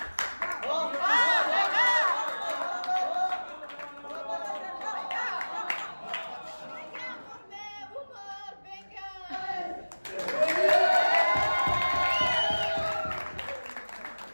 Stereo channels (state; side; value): inverted; both; correlation -1.00